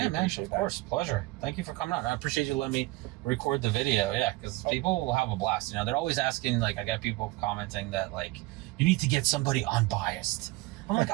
of course, pleasure. Thank you for coming on. I appreciate you letting me record the video. Yeah, because people will have a blast. They're always asking. Like, I got people commenting that you need to get somebody unbiased. I'm like,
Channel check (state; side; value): quieter; left; 21.3 dB